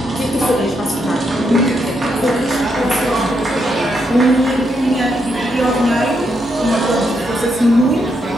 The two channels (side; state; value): both; normal; correlation 0.79